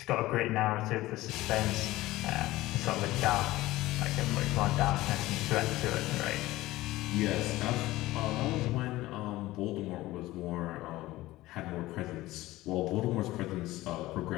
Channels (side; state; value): right; quieter; 17.5 dB